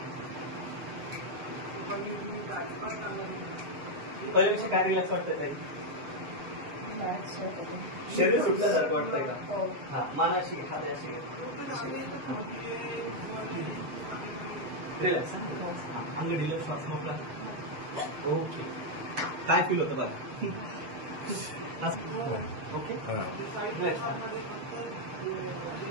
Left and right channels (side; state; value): left; late; 7.4 ms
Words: पहिल्यापेक्षा काय रिलॅक्स वाटतंय काही? शरीर सुटल्यासारखं वाटतंय का? हा मानाशी हात अशी रिलॅक्स. आम्ही रिलॅक्स वाटतो. ओके. काय फील होतं बघा. ओके